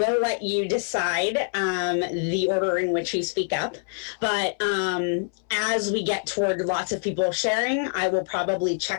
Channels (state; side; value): silent; right; 62 dB below the other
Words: let you decide the order in which you speak up. But as we get toward lots of people sharing, I will probably